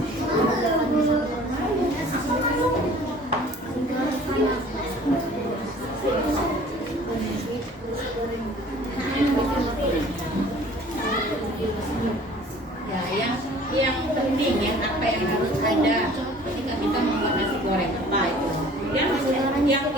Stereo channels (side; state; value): both; normal; correlation 0.49